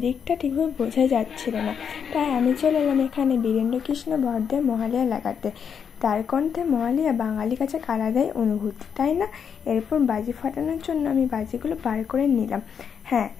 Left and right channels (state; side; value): quieter; right; 7.2 dB